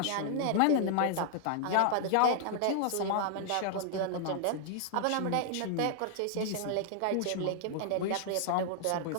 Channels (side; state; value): both; different; correlation -0.01